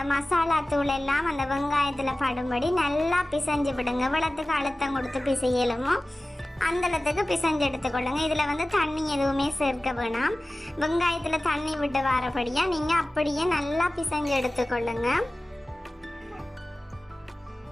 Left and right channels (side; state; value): both; normal; correlation 0.97